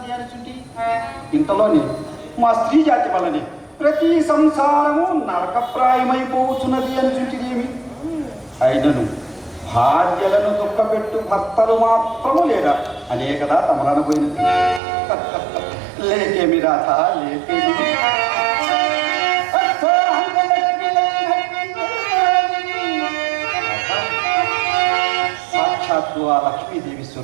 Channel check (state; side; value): drops out; left; at 14.8 s